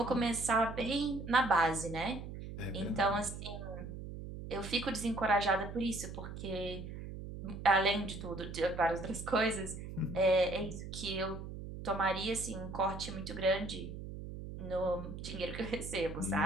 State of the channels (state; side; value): noise; right; hum, 9 dB below the sound